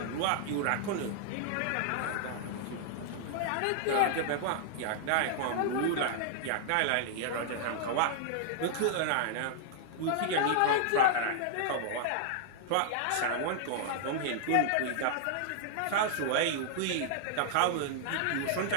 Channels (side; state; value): both; different; correlation -0.01